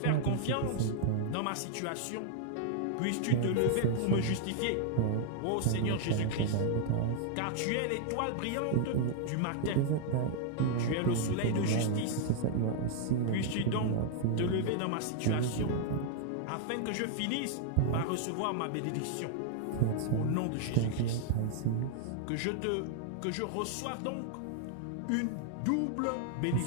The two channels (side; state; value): both; different; correlation 0.00